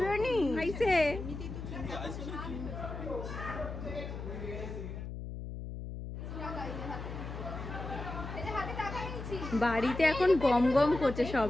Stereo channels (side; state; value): left; noise; hum, 8 dB below the sound